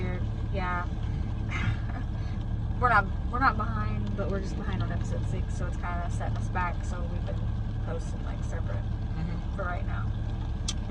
Yeah. We're not behind, but we're just behind on episode 6, so it's kind of setting us back. So we've been posting like separate for right now.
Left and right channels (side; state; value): both; identical; correlation 1.00